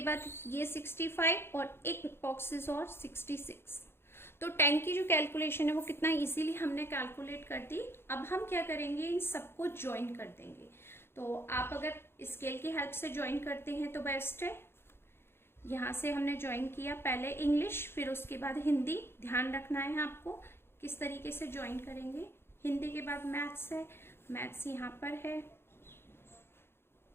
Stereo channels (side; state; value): right; late; 0.11 ms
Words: बाद ये 65 और एक बॉक्सेस और 66। तो 10 की जो कैलकुलेशन है वो कितना इजीली हमने कैलकुलेट कर दी। अब हम क्या करेंगे, इन सबको ज्वाइन कर देंगे। तो आप अगर स्केल की हेल्प से ज्वाइन करते हैं तो बेस्ट है। यहाँ से हमने ज्वाइन किया, पहले इंग्लिश फिर उसके बाद हिंदी। ध्यान रखना है आपको किस तरीके से ज्वाइन करेंगे। हिंदी के बाद मैथ्स है, मैथ्स यहाँ पर है,